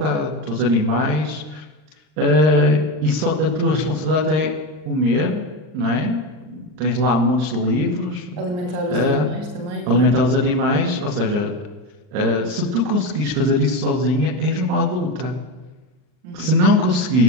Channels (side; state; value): left; late; 39 ms